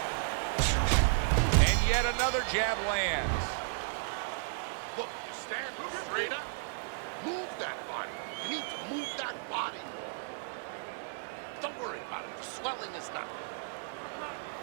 And yet another jab lands. Look, you stand straight up. Move that body. You need to move that body. Don't worry about it. The swelling is not.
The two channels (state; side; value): silent; left; digital silence